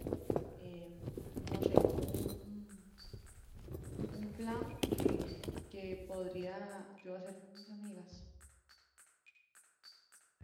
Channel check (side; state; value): both; identical; correlation 1.00